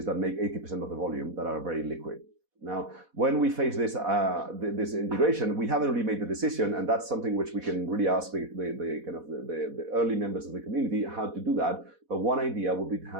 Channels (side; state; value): left; late; 4.1 ms